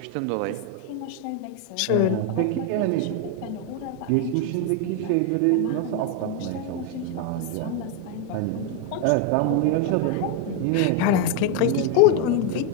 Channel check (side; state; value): both; different; correlation 0.01